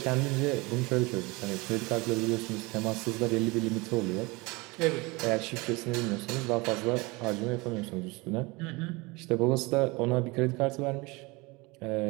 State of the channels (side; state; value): left; quieter; 24.6 dB